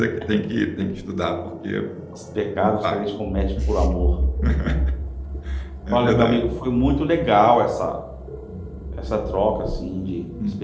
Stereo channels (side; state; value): both; identical; correlation 1.00